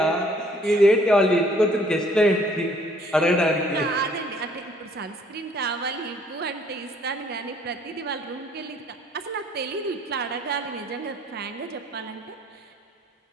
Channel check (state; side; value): normal; both; correlation 0.61